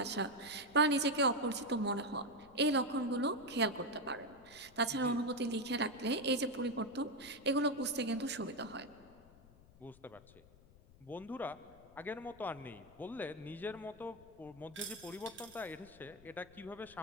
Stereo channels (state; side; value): noise; left; rumble, 24 dB below the sound